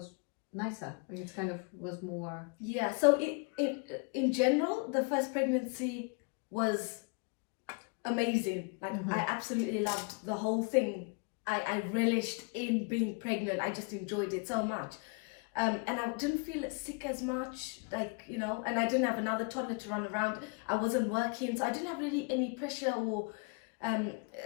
nicer. It kind of was more... Yeah, so in general, the first pregnancy was amazing. Like I absolutely loved the whole thing. I relished in being pregnant. I just enjoyed it so much. And I didn't feel sick as much, like, you know, and I didn't have another toddler to run around. I wasn't working, so I didn't have really any pressure or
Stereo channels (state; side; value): quieter; right; 34.7 dB